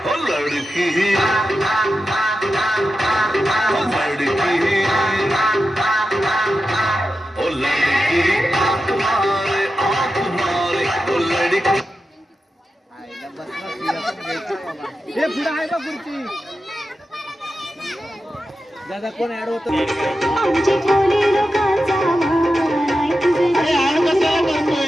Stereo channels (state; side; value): normal; both; correlation 0.91